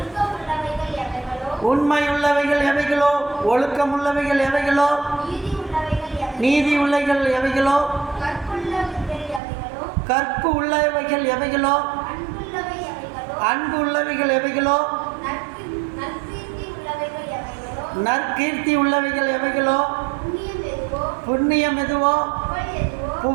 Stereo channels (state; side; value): drops out; left; at 9.4 s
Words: எவைகளோ, உண்மையுள்ளவைகள் எவைகளோ, ஒழுக்கமுள்ளவைகள் எவைகளோ, நீதி உள்ளவைகள் எவைகளோ, நீதி உள்ளவைகள் எவைகளோ, கற்பு உள்ளவைகள் எவைகளோ, அன்பு உள்ளவைகள் எவைகளோ, நற்கீர்த்தி உள்ளவைகள் எவைகளோ, நற்கீர்த்தி உள்ளவைகள் எவைகளோ, புண்ணியம் எதுவோ, புகழ் எதுவோ,